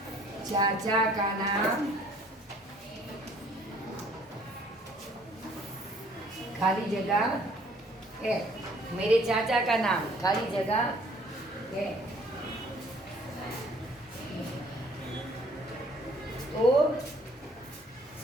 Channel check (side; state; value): both; normal; correlation 0.58